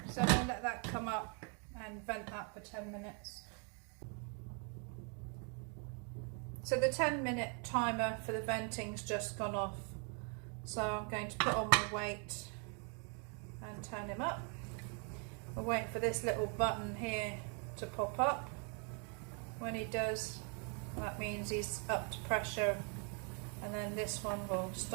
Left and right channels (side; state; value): left; quieter; 38.5 dB